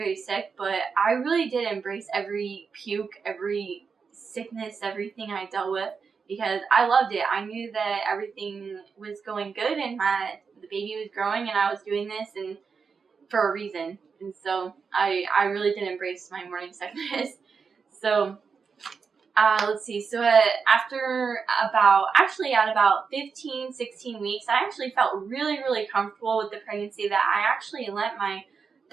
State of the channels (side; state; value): left; quieter; 5.5 dB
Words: sick, but I really did embrace every puke, every sickness, everything I dealt with because I loved it. I knew that everything was going good and the baby was growing and I was doing this and for a reason. And so I really did embrace my morning sickness. So let's see. So at about 15, 16 weeks, I actually felt really, really comfortable with the pregnancy that I actually lent my